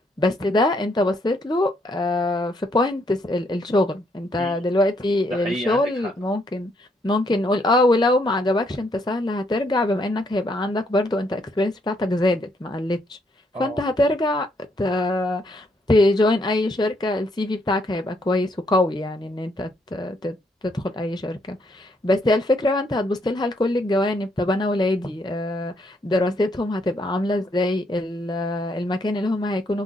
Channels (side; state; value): both; normal; correlation 0.73